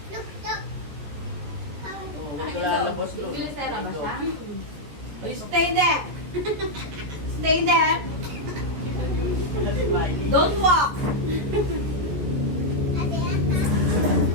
Oh, huwag ka lalabas doon. Bilisera ba siya? Stay there. Stay there. Don't walk.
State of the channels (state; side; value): late; left; 14 ms